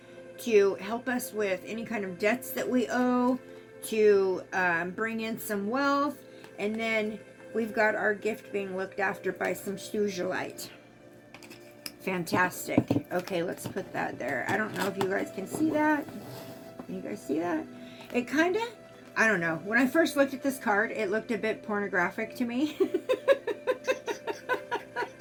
to help us with any kind of debts that we owe, to bring in some wealth, and then we've got our gift being looked after by some sugilite. Fantastic. Okay, let's put that there. I don't know if you guys can see that. Can you guys see that? It kind of, I don't know. When I first looked at this card, it looked a bit pornographic to me.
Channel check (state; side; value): identical; both; correlation 1.00